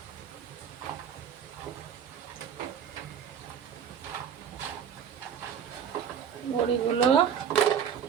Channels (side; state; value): left; quieter; 8.1 dB